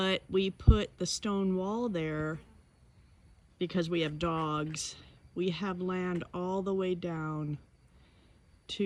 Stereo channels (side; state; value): both; identical; correlation 1.00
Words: we put the stone wall there because we have dogs. We have land all the way down